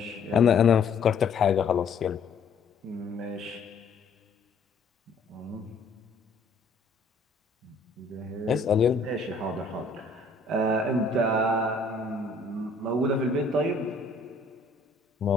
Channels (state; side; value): quieter; right; 3.6 dB